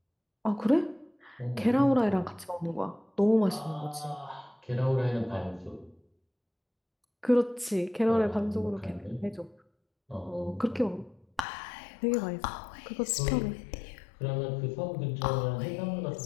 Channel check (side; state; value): right; drops out; at 11.4 s